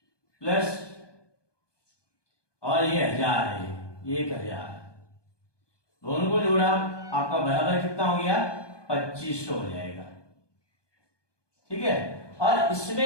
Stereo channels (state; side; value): late; right; 1.2 ms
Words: प्लस और ये 1000 है, 1000, दोनों को जोड़ा आपका बराबर कितना हो गया? 2500 हो जाएगा, ठीक है। और